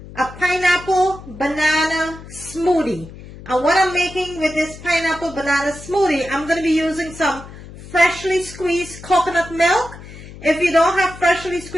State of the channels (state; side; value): noise; left; hum, 16 dB below the sound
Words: a pineapple banana smoothie. And what I'm making with this pineapple banana smoothie, I'm going to be using some freshly squeezed coconut milk. If you don't have freshly